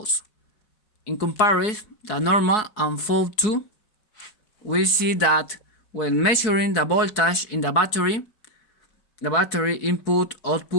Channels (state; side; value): late; right; 4.6 ms